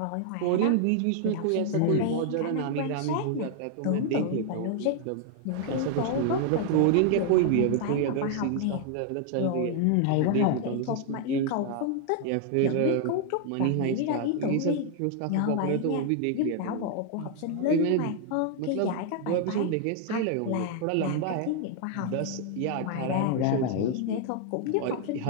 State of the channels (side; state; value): both; different; correlation 0.00